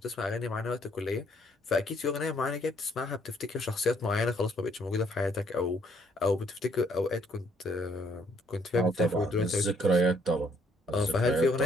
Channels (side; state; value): both; normal; correlation 0.67